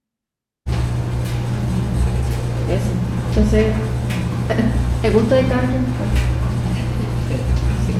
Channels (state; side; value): identical; both; correlation 1.00